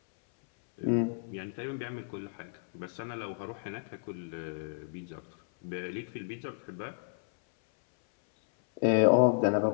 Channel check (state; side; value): silent; right; 56 dB below the other